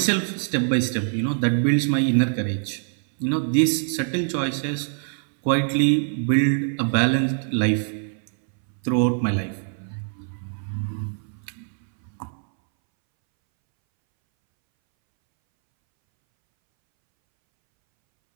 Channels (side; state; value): left; silent; 63 dB below the other